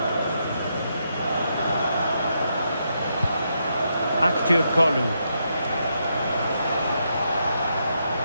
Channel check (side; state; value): both; inverted; correlation -0.80